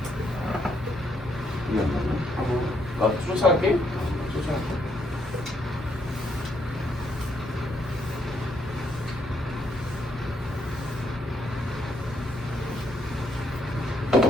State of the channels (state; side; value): normal; both; correlation 0.74